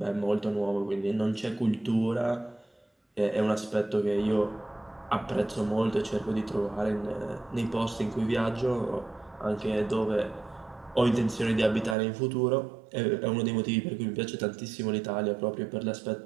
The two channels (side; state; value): left; drops out; at 12.0 s